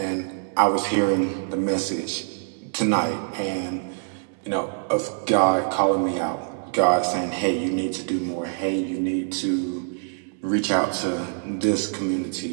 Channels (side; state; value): left; silent; digital silence